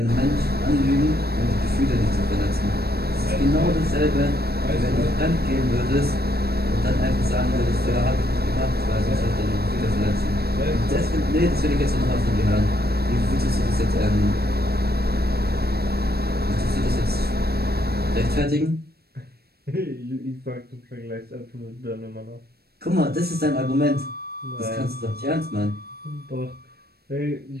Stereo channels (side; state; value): left; late; 0.46 ms